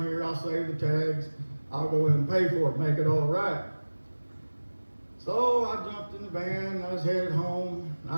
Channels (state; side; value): inverted; both; correlation -1.00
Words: here, I'll save the tags. I'll go in and pay for it, make it all right. So I jumped in the van, and I was headed home.